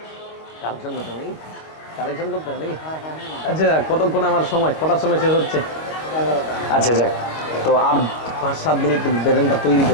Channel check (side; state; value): right; late; 25 ms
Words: কালেকশন করতে হবে নাকি? আচ্ছা, কতক্ষণ আমার সময়, কটার সময় শেষ হচ্ছে? আচ্ছা যাক, তো আর 5-7 মিনিট ব্রেনটা তৈরি